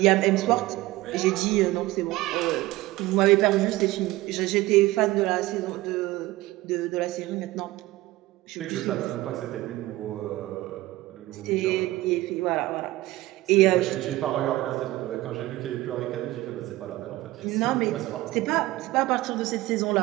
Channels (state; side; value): quieter; left; 18.2 dB